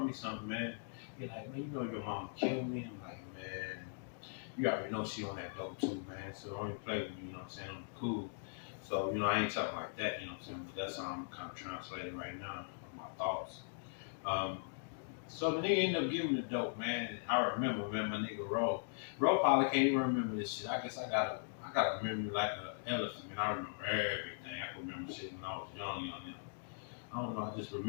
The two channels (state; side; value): silent; right; digital silence